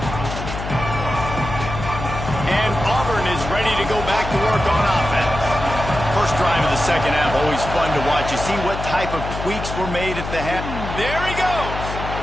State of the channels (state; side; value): noise; left; hum, 7 dB below the sound